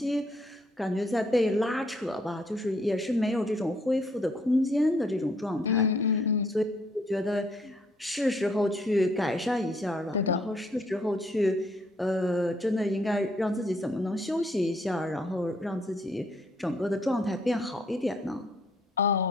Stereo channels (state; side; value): normal; both; correlation 0.67